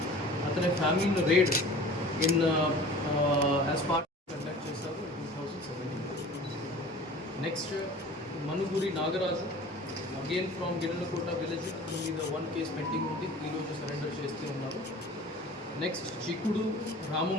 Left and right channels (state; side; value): normal; both; correlation 0.42